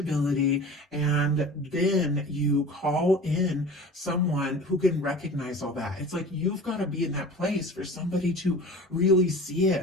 and then you call in someone who can recognize all that. It's like you've got to be in that place for somebody to really see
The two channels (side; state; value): both; normal; correlation 0.39